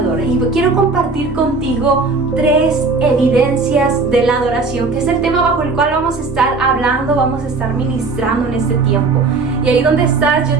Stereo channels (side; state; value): left; quieter; 4.0 dB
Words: Y quiero compartir contigo 3 evidencias de la adoración, que es el tema bajo el cual vamos a estar hablando, vamos a estar ministrando en este tiempo. Y ahí donde estás, yo